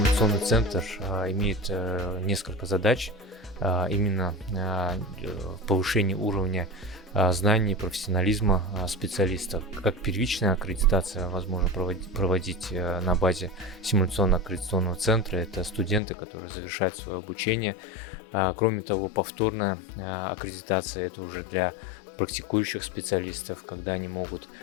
центр имеет несколько задач, именно повышение уровня знаний, профессионализма специалистов. Как первичная аккредитация возможно проводить на базе симуляционно-аккредитационного центра. Это студенты, которые завершают свое обучение. Кроме того, повторная аккредитация — это уже для практикующих специалистов, когда они могут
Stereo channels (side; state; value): right; drops out; at 16.0 s